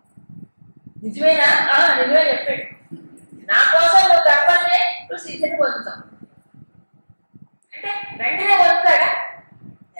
నిజమేనా? నిజమే చెప్పాడు. నా కోసం నువ్వు కర్మల్నే నువ్వు సిద్ధిని పొందుతావు అంటే వెంటనే పొందుతాడా?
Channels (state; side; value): inverted; both; correlation -1.00